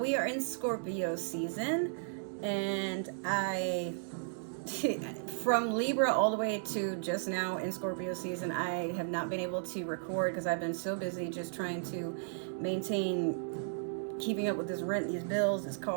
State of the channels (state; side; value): silent; left; digital silence